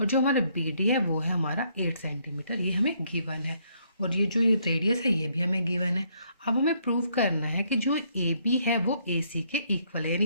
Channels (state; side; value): inverted; both; correlation -0.70